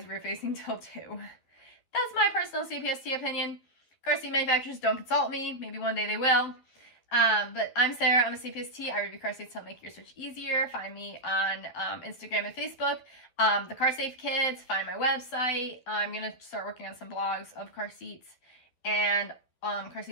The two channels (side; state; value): right; late; 12 ms